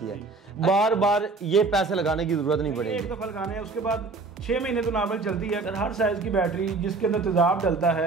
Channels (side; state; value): left; quieter; 3.9 dB